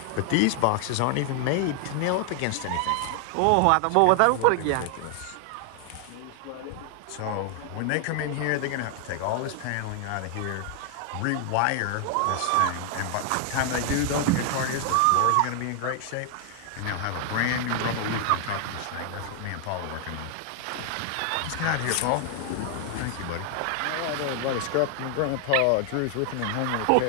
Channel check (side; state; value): both; different; correlation 0.00